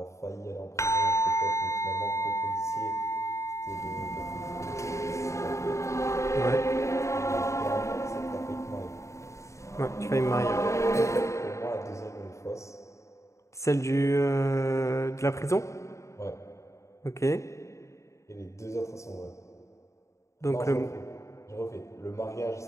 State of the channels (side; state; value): right; late; 0.14 ms